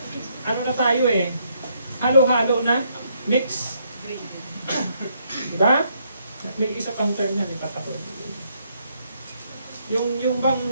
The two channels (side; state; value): both; inverted; correlation -0.73